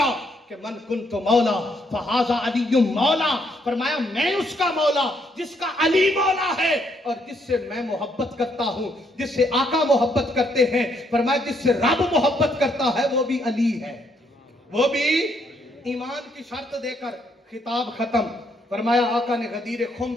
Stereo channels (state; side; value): normal; both; correlation 0.72